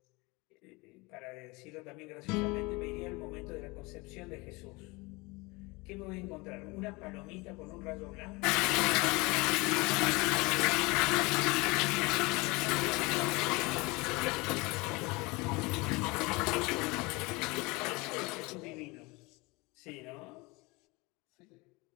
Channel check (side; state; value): right; quieter; 25.0 dB